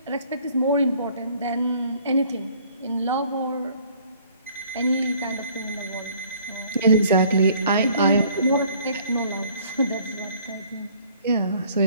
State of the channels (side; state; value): both; inverted; correlation -0.57